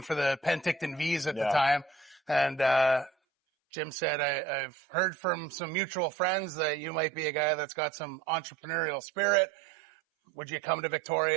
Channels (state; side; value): drops out; left; at 3.1 s